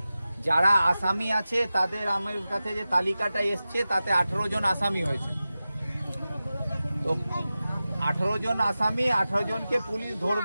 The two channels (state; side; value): inverted; both; correlation -0.95